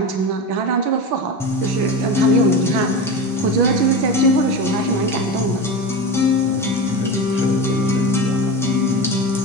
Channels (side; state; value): both; normal; correlation 0.24